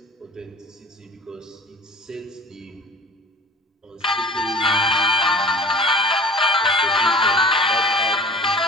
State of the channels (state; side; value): normal; both; correlation 0.42